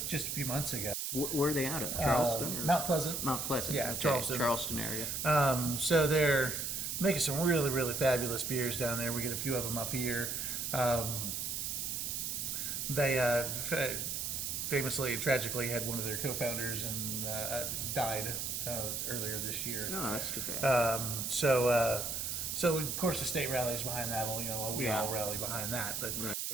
just a few months ago. Where are they out of? Charleston? Or? Mount Pleasant. Mount Pleasant. Yeah, okay. Charleston area. So they're making some really, really fabulous beers down there. We get a few of them up here. They famously and tragically had one of their co-founders and died earlier this year. Oh, that's too bad. So of course the state rallies behind that. We all rally behind that, but right.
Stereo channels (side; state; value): right; noise; hiss, 2 dB below the sound